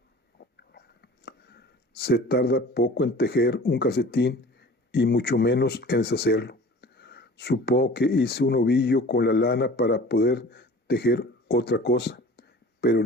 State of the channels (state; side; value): normal; both; correlation 0.43